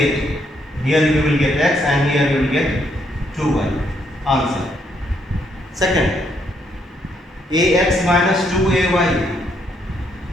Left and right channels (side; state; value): both; normal; correlation 0.73